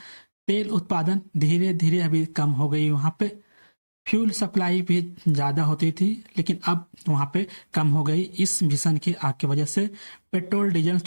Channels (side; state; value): both; inverted; correlation -1.00